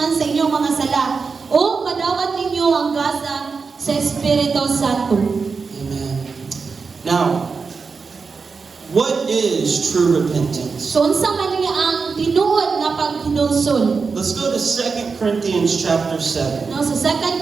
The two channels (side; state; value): left; quieter; 4.9 dB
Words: sa inyong mga sala, o madawat ninyo ang gasa sa Espiritu Santo. Amen. Now, what is true repentance? So unsa man niya ang tinuod nga paghinusol? Let's go to 2 Corinthians chapter 7. No, sa